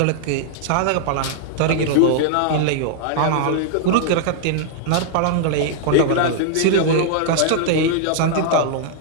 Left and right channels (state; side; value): different; both; correlation -0.01